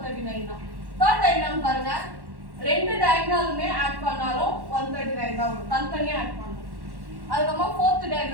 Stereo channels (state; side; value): late; left; 1.1 ms